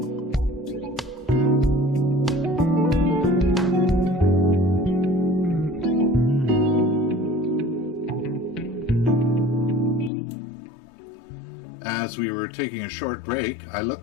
As we were taking a short break, I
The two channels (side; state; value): right; drops out; at 10.1 s